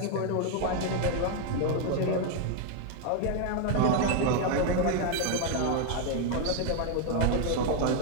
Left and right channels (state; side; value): different; both; correlation 0.00